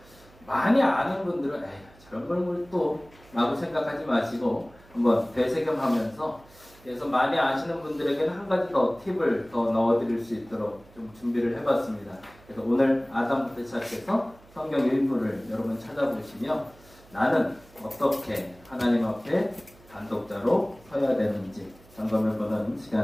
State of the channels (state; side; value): noise; right; hum, 25 dB below the sound